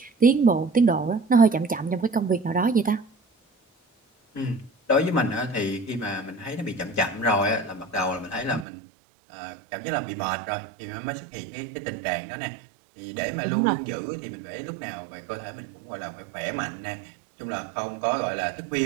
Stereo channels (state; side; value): drops out; left; at 8.7 s